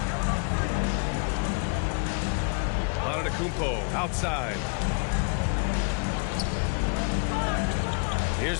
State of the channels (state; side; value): quieter; right; 38.1 dB